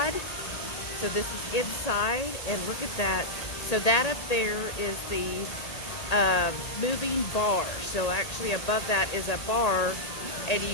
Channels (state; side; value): late; right; 1.8 ms